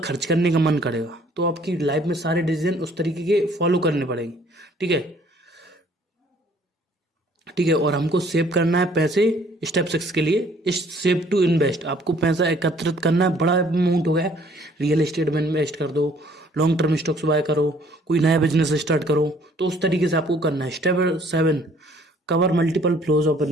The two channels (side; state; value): both; normal; correlation 0.59